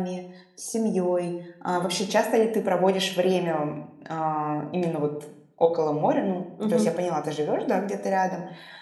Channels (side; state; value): both; identical; correlation 1.00